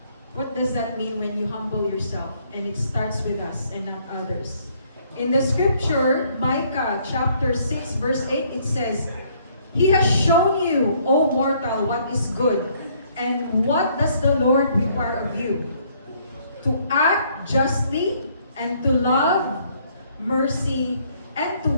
What does that mean when you humble yourself? And it starts with us and not others. In the scripture, Micah chapter 6 verse 8, it says, He has shown you, O mortal, what is good. And what does the Lord require of you? To act justly and to love mercy and to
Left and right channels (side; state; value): both; inverted; correlation -0.65